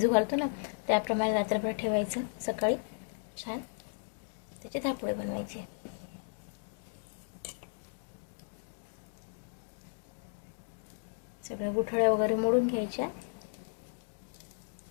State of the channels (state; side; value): silent; right; digital silence